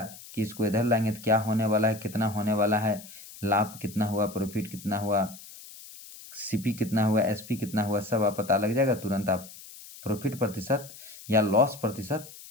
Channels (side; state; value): left; noise; hiss, 17 dB below the sound